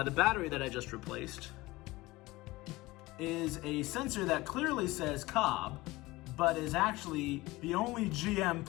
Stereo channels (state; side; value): quieter; right; 20.2 dB